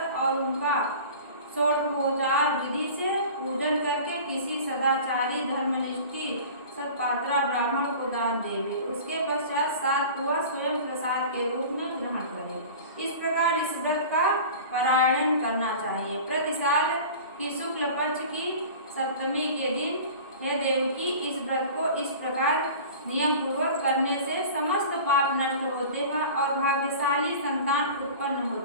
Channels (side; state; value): both; inverted; correlation -0.39